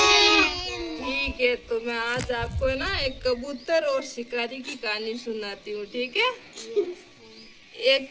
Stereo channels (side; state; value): both; identical; correlation 1.00